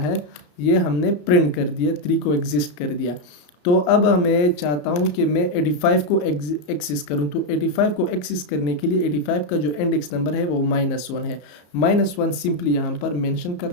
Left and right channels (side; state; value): right; late; 33 ms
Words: ये हमने प्रिंट कर दिया, 3 को एग्जिस्ट कर दिया। तो अब मैं चाहता हूं कि मैं 85 को एक्सेस करूं। तो 85 को एक्सेस करने के लिए 85 का जो इंडेक्स नंबर है वो -1 है। -1 सिंपली यहाँ पर मेंशन